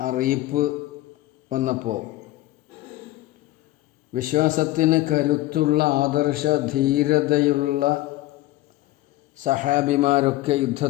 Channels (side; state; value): right; quieter; 17.0 dB